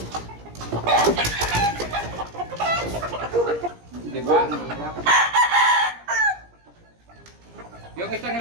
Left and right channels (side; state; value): left; late; 17 ms